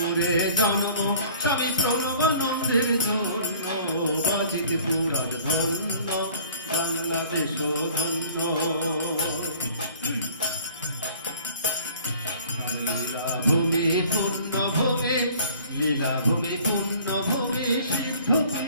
জন্ম স্বামী প্রণবানন্দের জন্য, বাজিতে পুরাজ ধন্য, বাংলাদেশ ধন্য। লীলাভূমি পূর্ণভূমি, লীলাভূমি পূর্ণভূমি,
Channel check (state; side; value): inverted; both; correlation -0.52